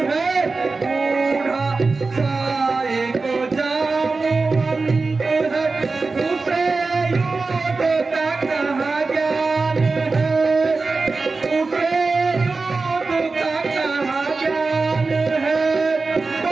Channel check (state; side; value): quieter; left; 3.9 dB